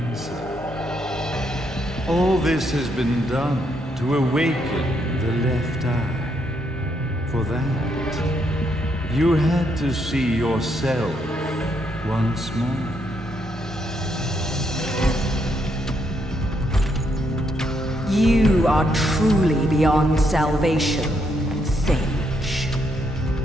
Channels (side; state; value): both; normal; correlation 0.76